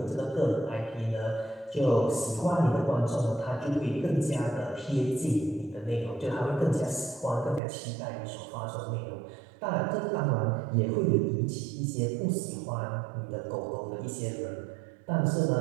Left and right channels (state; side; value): drops out; left; at 7.6 s